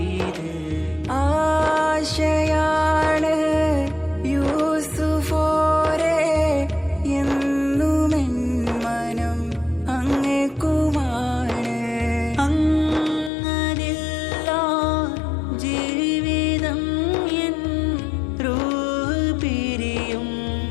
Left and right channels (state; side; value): drops out; right; at 13.3 s